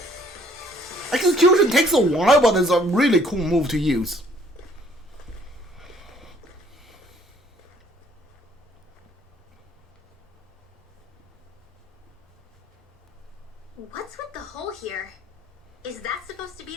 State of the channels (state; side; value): normal; both; correlation 0.61